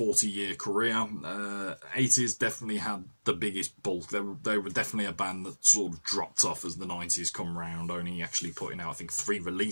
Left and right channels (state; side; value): inverted; both; correlation -1.00